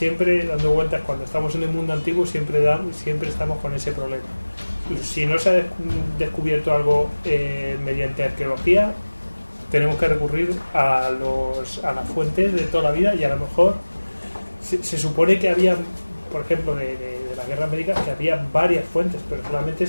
dando vueltas. Cuando estamos en el mundo antiguo siempre estamos con ese problema. Si no se ha descubierto algo mediante arqueología, tenemos que recurrir a las fuentes de toda la vida, y a lo mejor se supone que había, por ejemplo, de las guerras médicas, que había varias fuentes, pero solamente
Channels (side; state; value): both; inverted; correlation -1.00